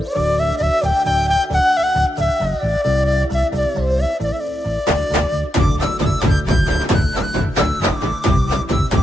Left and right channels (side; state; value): both; normal; correlation 0.86